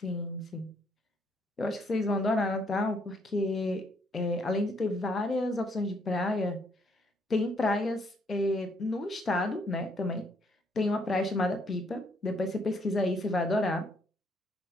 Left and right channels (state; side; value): normal; both; correlation 0.69